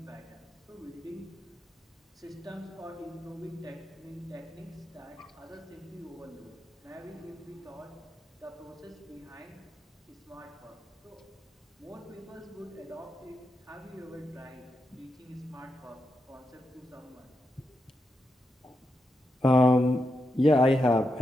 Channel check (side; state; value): both; normal; correlation 0.85